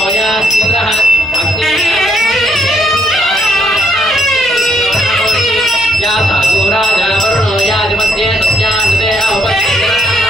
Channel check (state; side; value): normal; both; correlation 0.72